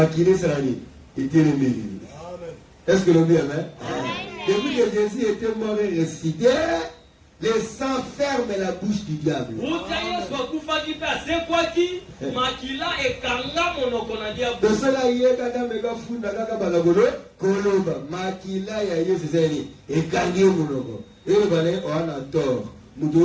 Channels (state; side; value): identical; both; correlation 1.00